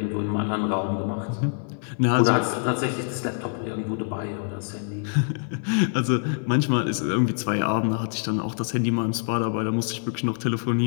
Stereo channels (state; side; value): silent; right; 62 dB below the other